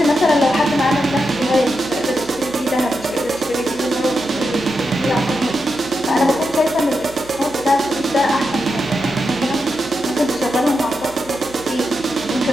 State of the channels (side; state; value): right; noise; hum, 19 dB below the sound